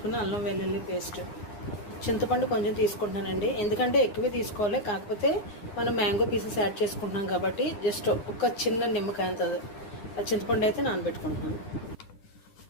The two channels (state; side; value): late; right; 9.9 ms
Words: అల్లం వెల్లుల్లి పేస్ట్, చింతపండు కొంచెం తీసుకుంటున్నానండి. ఎందుకంటే ఎక్కువ తీసుకోవాలి, కాకపోతే మనం మ్యాంగో పీసెస్ యాడ్ చేసుకుంటున్నాం కాబట్టి జస్ట్ ఒక చిన్న నిమ్మకాయ అంత చింతపండు అయితే నానబెట్టుకుంటున్నాను.